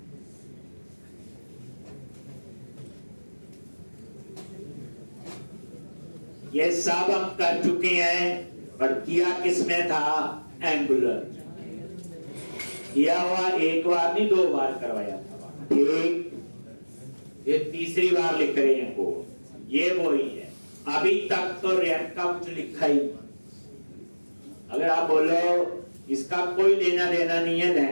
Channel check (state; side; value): inverted; both; correlation -1.00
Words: ये सब हम कर चुके हैं, और किया किसमें था, एंगुलर किया हुआ, एक बार नहीं 2 बार करवाया था, ठीक। ये तीसरी बार लिख रहे हैं वो, ये वही है। अभी तक तो रैंक का कुछ लिखा ही नहीं। अगर आप बोलो इसका कोई लेना देना नहीं है